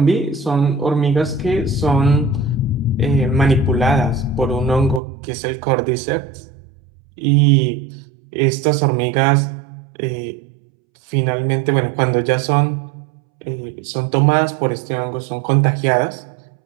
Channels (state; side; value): drops out; left; at 5.0 s